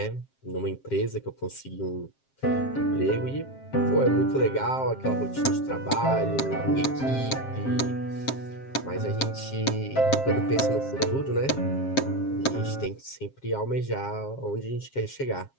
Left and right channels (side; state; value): right; late; 7.5 ms